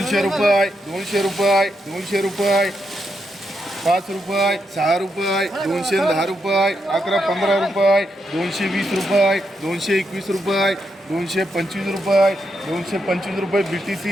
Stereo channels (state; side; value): normal; both; correlation 0.82